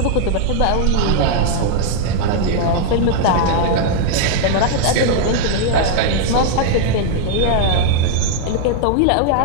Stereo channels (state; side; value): different; both; correlation 0.00